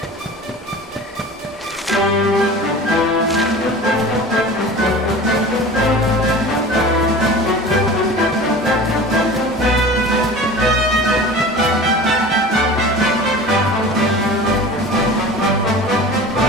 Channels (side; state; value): both; normal; correlation 0.37